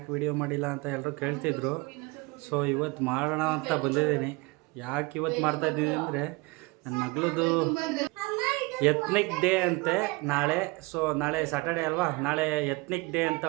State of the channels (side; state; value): left; quieter; 25.0 dB